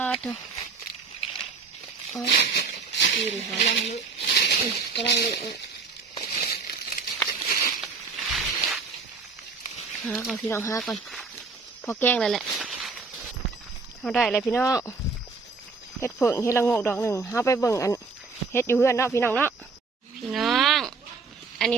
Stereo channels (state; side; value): quieter; left; 4.5 dB